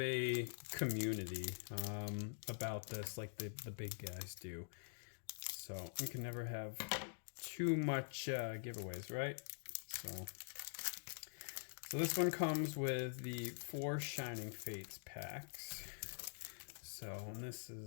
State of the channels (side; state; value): right; silent; digital silence